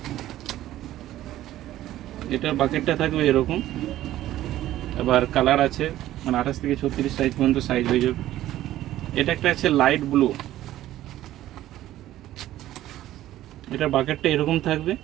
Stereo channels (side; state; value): left; quieter; 14.0 dB